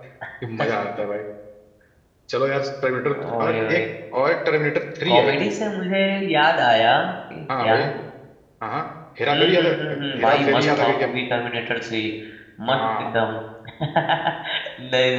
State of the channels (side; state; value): both; identical; correlation 1.00